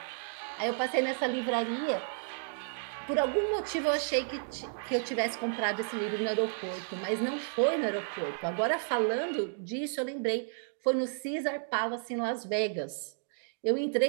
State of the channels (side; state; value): left; silent; digital silence